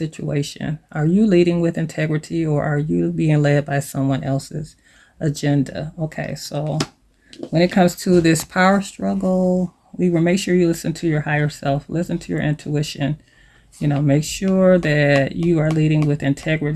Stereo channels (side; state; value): both; identical; correlation 1.00